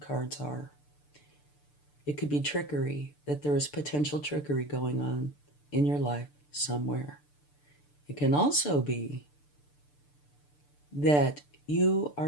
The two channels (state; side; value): late; right; 6.8 ms